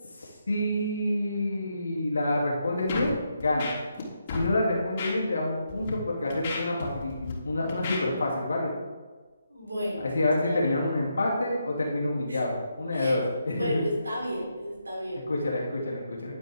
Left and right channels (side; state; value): both; inverted; correlation -0.81